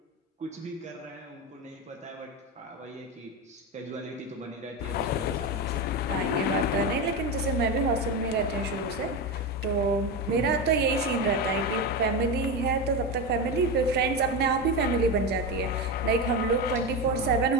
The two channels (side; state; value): both; normal; correlation 0.17